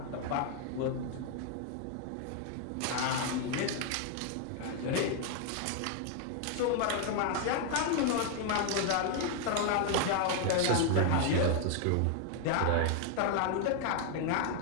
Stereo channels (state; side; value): different; both; correlation 0.00